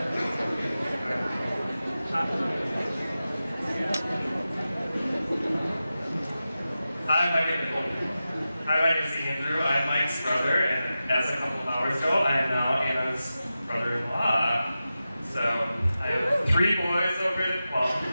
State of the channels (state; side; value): inverted; both; correlation -0.93